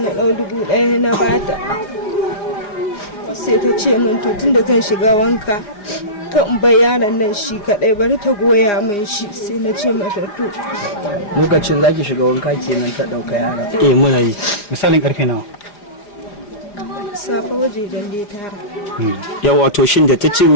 ɗau 1000 na bata. Sai ta ce min to tunda zan shiga wanka kan bai yaron nan shi kadai bari ta goya min shi, sai na ce mata to. Lokacin zaki shiga wanka kenan ta dauka yara. muna yi. Misalin karfe nawa? Safa wajejen dai tara. Yawa to shin da ta ce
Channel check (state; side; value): late; right; 4.9 ms